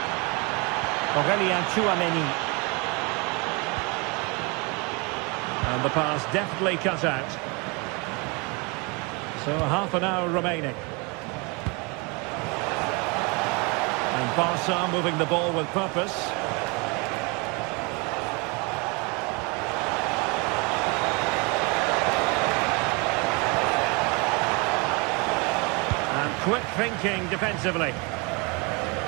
Aurelien Tchouameni. And the pass deftly cut out. So half an hour remaining. And Barca moving the ball with purpose. And quick thinking defensively.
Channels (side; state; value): left; quieter; 29.7 dB